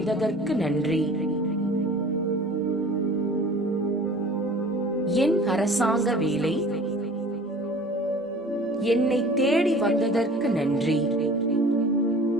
நன்றி. என் அரசாங்க வேலை என்னை தேடி வந்ததற்கு நன்றி.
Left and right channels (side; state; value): both; normal; correlation 0.45